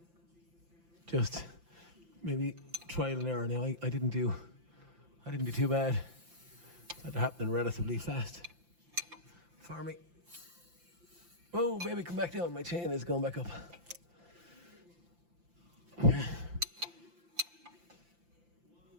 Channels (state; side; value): late; left; 5.8 ms